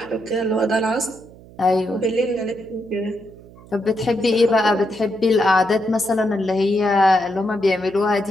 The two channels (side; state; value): right; noise; hum, 22 dB below the sound